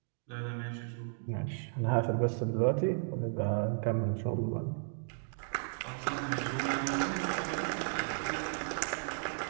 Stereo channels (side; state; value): left; silent; digital silence